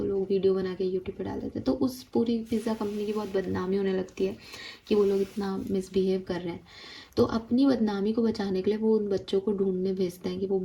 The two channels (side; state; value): both; identical; correlation 1.00